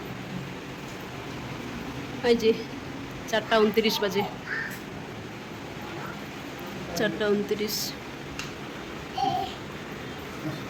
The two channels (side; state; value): both; identical; correlation 1.00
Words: এই যে 4:29 বাজে, 4:29।